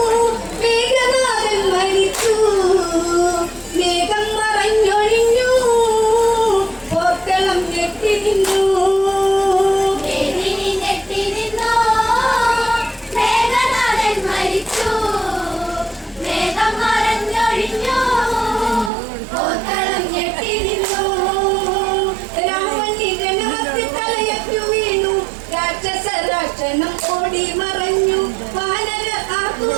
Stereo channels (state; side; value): drops out; left; at 18.9 s